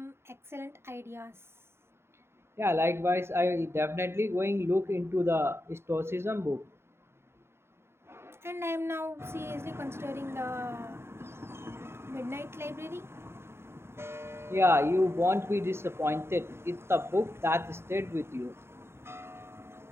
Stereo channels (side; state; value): left; late; 0.12 ms